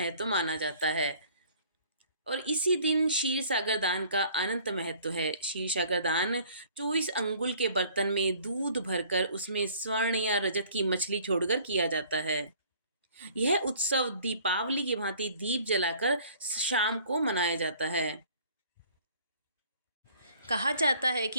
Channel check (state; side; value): inverted; both; correlation -0.54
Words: माना जाता है। और इसी दिन क्षीर सागर दान का अनंत महत्व है। क्षीर सागर दान 24 अंगुल के बर्तन में दूध भरकर उसमें स्वर्ण या रजत की मछली छोड़कर किया जाता है। यह उत्सव दीपावली की भांति दीप जलाकर शाम को मनाया जाता है। कहा जाता है